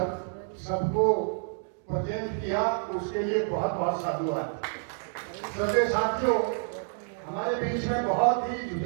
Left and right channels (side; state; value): left; silent; 59 dB below the other